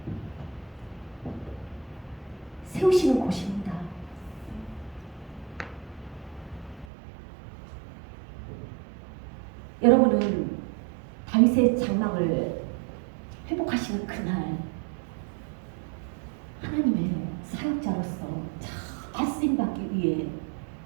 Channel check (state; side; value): drops out; left; at 6.9 s